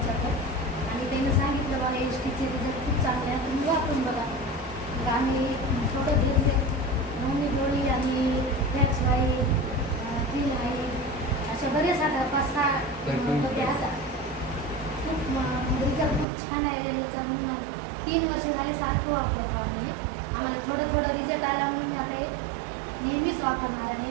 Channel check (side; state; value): left; drops out; at 16.2 s